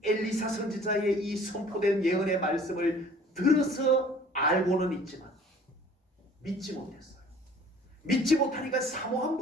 엘리사 선지자의 이 선포된 예언의 말씀을 들어서 알고는 있지만 믿지 못했어요. 믿지 못하니까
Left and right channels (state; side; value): normal; both; correlation 0.51